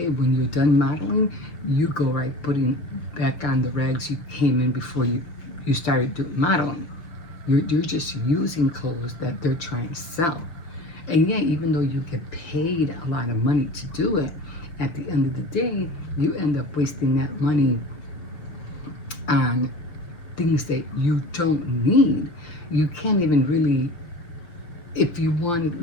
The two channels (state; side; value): late; right; 5.9 ms